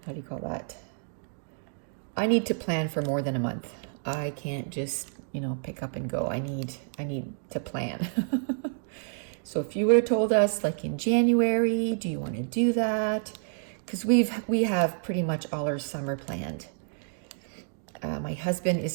do you call that? I need to plan for more than a month. I can't just, pick up and go. I need to plan. So if you would have told us like in January, do you want to do that? Because we have pretty much all our summer planned. My husband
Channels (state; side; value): silent; left; digital silence